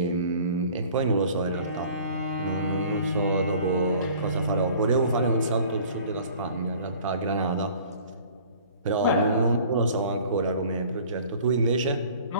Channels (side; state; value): both; inverted; correlation -0.49